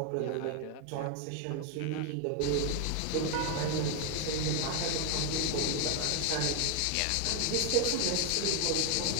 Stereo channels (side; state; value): both; different; correlation 0.01